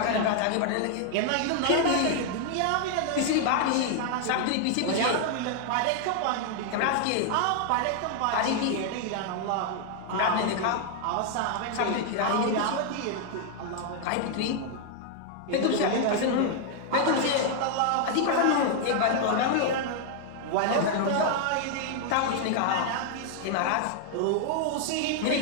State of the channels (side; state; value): both; different; correlation 0.00